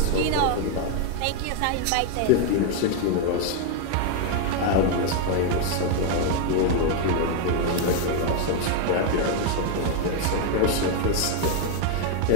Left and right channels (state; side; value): different; both; correlation 0.01